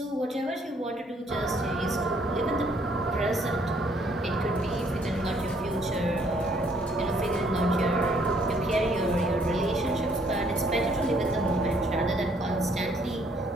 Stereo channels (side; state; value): both; normal; correlation 0.66